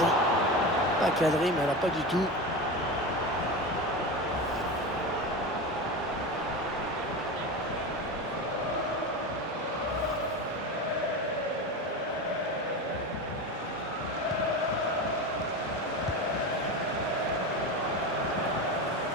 pas cadrée, mais alors pas du tout.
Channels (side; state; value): both; normal; correlation 0.24